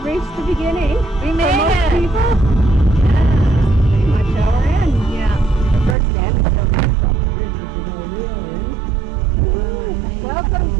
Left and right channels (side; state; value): left; drops out; at 6.0 s